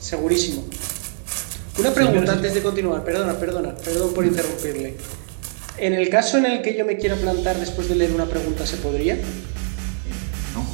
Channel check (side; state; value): left; silent; digital silence